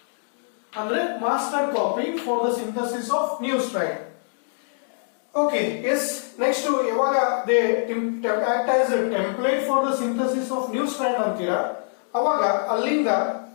ಅಂದ್ರೆ master copy for the synthesis of new strand. Okay yes next ಯಾವಾಗ they act as template for the synthesis of new strand ಅಂತೀರಾ ಅವಾಗ ಅಲ್ಲಿಂದ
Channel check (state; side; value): silent; right; digital silence